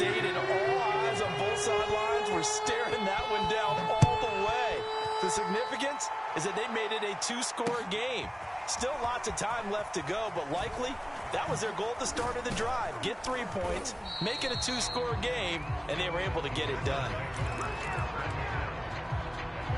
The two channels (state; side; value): identical; both; correlation 1.00